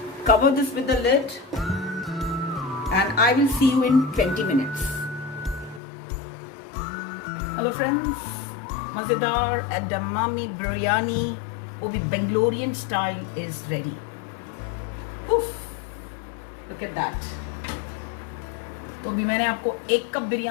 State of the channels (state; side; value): drops out; right; at 5.8 s